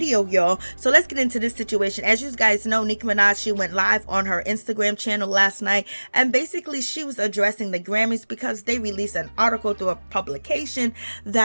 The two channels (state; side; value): inverted; both; correlation -1.00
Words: y'all. So let's get into this situation. As you guys know, Nicki Minaj, she went live on her Instagram channel last night, and basically she was addressing the Grammys because they released an article through a publication